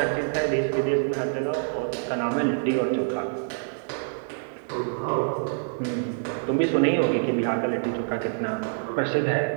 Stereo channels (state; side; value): silent; left; 59 dB below the other